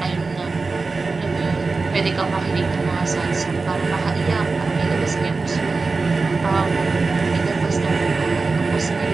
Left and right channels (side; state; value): left; quieter; 4.0 dB